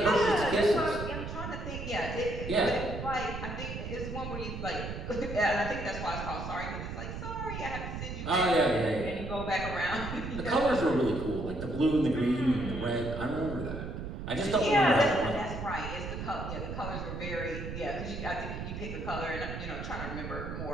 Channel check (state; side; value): noise; right; rumble, 6 dB below the sound